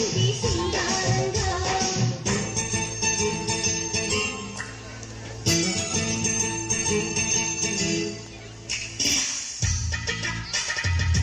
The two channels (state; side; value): identical; both; correlation 1.00